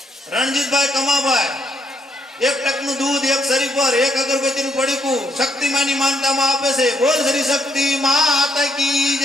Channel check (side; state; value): both; normal; correlation 0.73